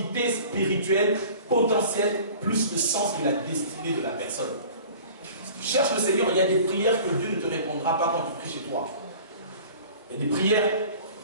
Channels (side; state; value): both; inverted; correlation -0.44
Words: spirituelle potentielle plus le sens de la destinée de la personne. Si tu cherches le Seigneur, il y a des prières que Dieu ne te répondra pas quand tu pries chez toi. Il y a des prières,